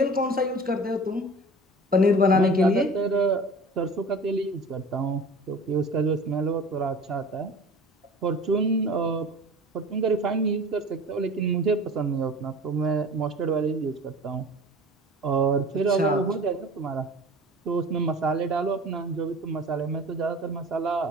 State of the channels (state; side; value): normal; both; correlation 0.40